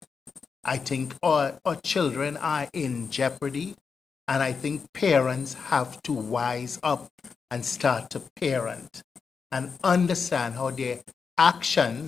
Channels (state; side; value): quieter; right; 5.5 dB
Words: I think our children are in jeopardy, and I think parents have to wise up and start to parent and understand how their